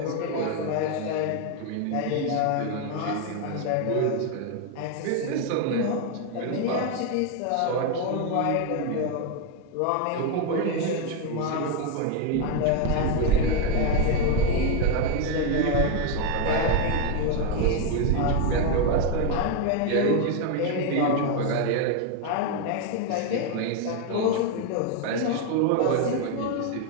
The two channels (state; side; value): different; both; correlation 0.01